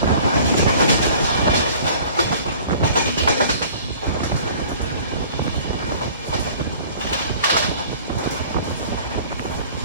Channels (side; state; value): both; inverted; correlation -0.49